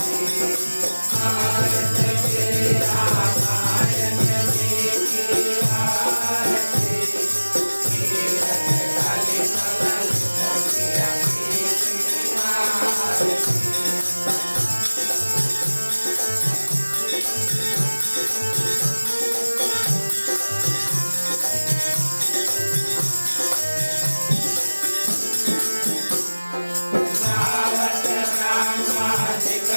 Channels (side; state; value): both; inverted; correlation -1.00